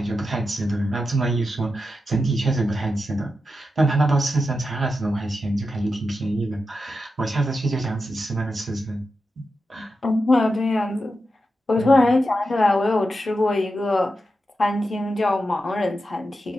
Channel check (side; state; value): both; normal; correlation 0.89